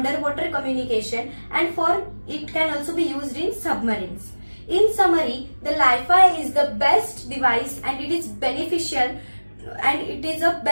communication, and for it can also be used in submarines. In summary, the Li-Fi is the best device and it is beneficial, and it is a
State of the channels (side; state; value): both; inverted; correlation -1.00